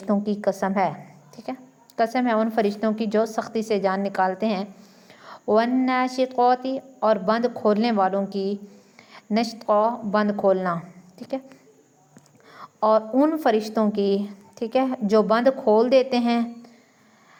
کی قسم ہے، ٹھیک ہے، قسم ہے ان فرشتوں کی جو سختی سے جان نکالتے ہیں۔ والناشطات اور بند کھولنے والوں کی، نشطا بند کھولنا، ٹھیک ہے، اور ان فرشتوں کی، ٹھیک ہے، جو بند کھول دیتے ہیں،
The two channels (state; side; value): identical; both; correlation 1.00